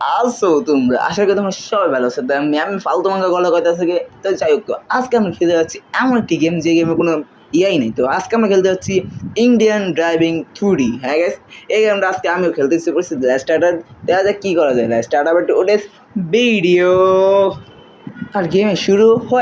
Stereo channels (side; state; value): both; identical; correlation 1.00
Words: আছো তোমরা? আশা করি তোমরা সবাই ভালো আছো। তাই আমি ফালতু মাঙ্গা গলা কথা থেকে তো যাই হোক, আজকে আমরা খেলতে যাচ্ছি এমন একটি গেম যে গেমে কোনো ইয়াই নেই। তো আজকে আমরা খেলতে যাচ্ছি ইন্ডিয়ান ড্রাইভিং 2D। হ্যাঁ গাইস, এই গেমটা আজকে আমিও খেলতে ইচ্ছে করছি। স্টার্টার দেখা যাক কী করা যায়। স্টার্টার বাট ওটা ভিডিও আর গেমে শুরু